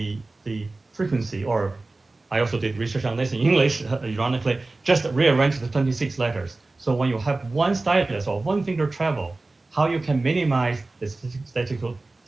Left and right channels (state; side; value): quieter; left; 3.2 dB